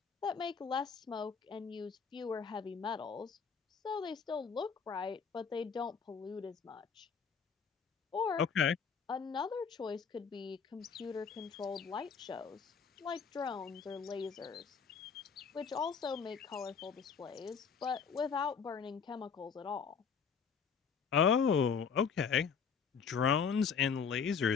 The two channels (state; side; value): quieter; right; 6.2 dB